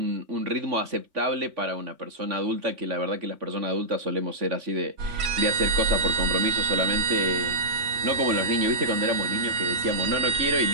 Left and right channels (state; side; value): late; left; 3.5 ms